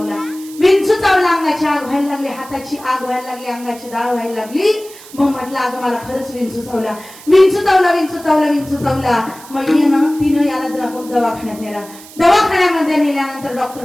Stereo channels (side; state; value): right; noise; hiss, 19 dB below the sound